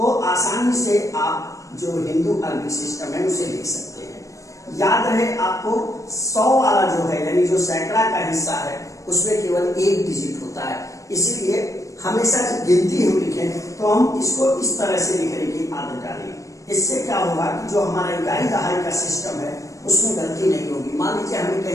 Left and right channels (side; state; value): right; late; 0.16 ms